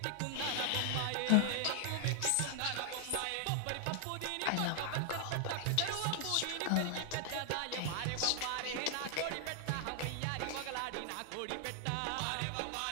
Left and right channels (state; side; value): different; both; correlation 0.00